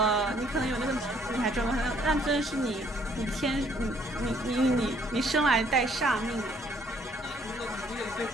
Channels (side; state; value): both; normal; correlation 0.64